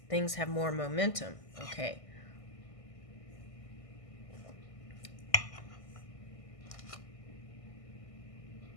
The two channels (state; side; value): late; right; 1.6 ms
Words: things have more momentum. Okay.